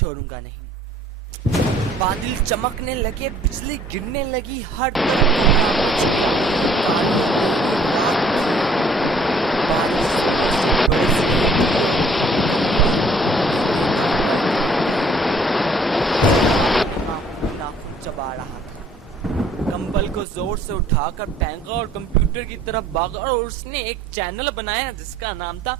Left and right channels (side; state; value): both; normal; correlation 0.59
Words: नहीं। बादल चमकने लगे, बिजली गिरने लगी, हर तरफ कोहरा मच गया, कालियां गहरी रात थी, बारिश से बरस रही थी, नाखून चबा रहा था। कंबल को जोर से उठाकर फेंका और कंप्यूटर की तरफ भागा और उसने एक चैनल बनाया जिसका नाम था